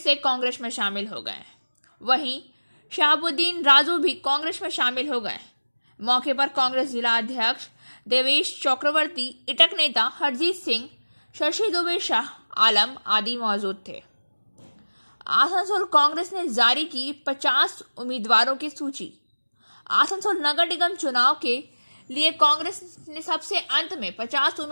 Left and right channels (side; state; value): both; inverted; correlation -1.00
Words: कांग्रेस में शामिल हो गए। वहीं शहाबुद्दीन राजू भी कांग्रेस में शामिल हो गए। मौके पर कांग्रेस जिला अध्यक्ष देवेश चक्रवर्ती, इटक नेता हरजीत सिंह, शशि दुबे, शाह आलम आदि मौजूद थे। आसनसोल कांग्रेस ने जारी की 50 उम्मीदवारों की सूची। आसनसोल नगर निगम चुनाव के लिए कांग्रेस ने सबसे अंत में 50